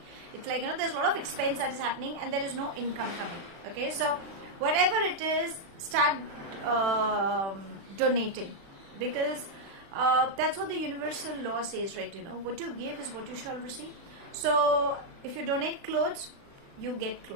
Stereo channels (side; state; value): left; late; 36 ms